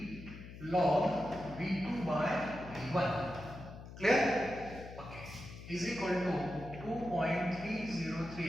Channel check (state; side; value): noise; left; hum, 13 dB below the sound